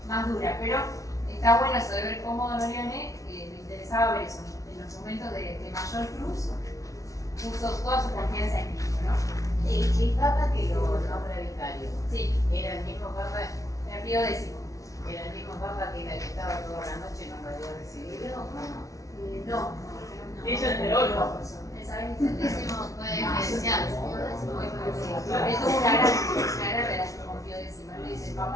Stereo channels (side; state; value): right; late; 0.16 ms